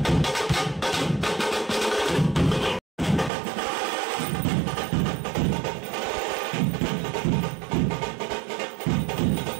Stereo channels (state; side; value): drops out; left; at 3.3 s